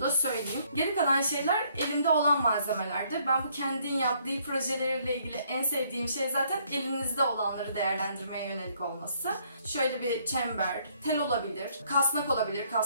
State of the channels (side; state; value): both; inverted; correlation -0.67